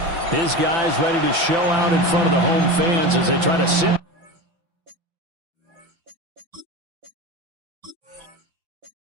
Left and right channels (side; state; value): left; late; 5.9 ms